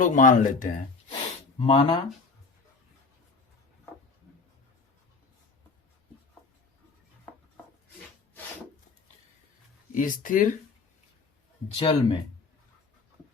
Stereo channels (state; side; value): quieter; right; 4.4 dB